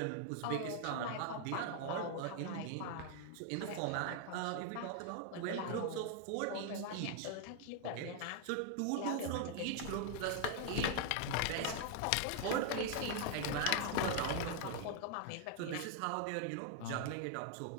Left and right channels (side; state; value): both; different; correlation 0.00